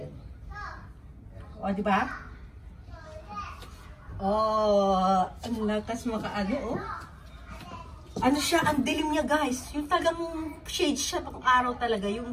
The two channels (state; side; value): identical; both; correlation 1.00